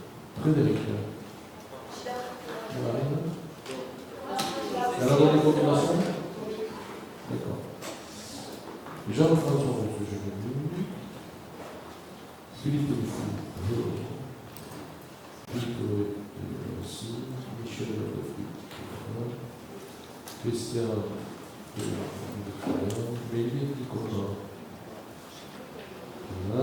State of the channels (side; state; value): both; identical; correlation 1.00